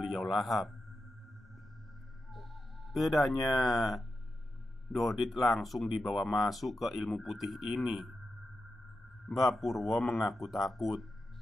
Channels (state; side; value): normal; both; correlation 0.90